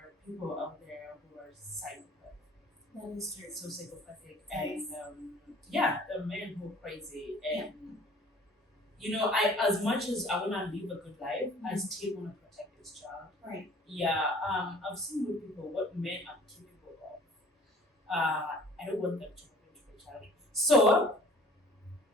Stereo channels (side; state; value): both; normal; correlation 0.50